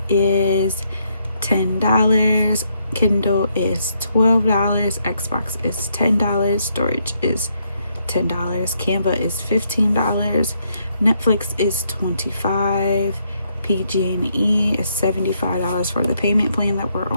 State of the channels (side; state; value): both; inverted; correlation -0.74